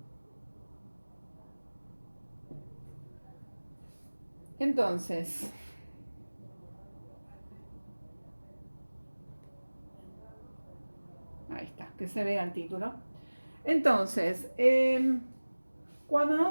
Entonces, ahí está, que se vea el título. Entonces, cuando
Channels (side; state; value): both; inverted; correlation -1.00